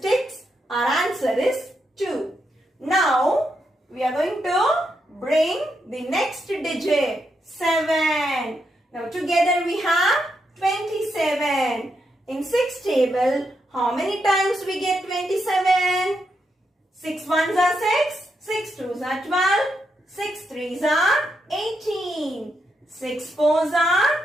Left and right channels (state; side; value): normal; both; correlation 0.82